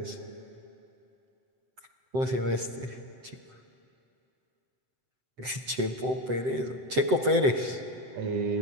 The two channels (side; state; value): left; late; 7.8 ms